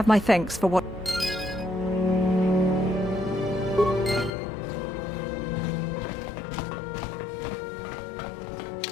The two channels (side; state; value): right; drops out; at 4.3 s